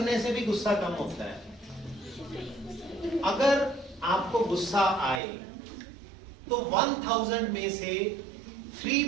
से भी गुस्सा कम होता है। अगर आपको गुस्सा आए तो 1000 में से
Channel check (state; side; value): drops out; left; at 5.2 s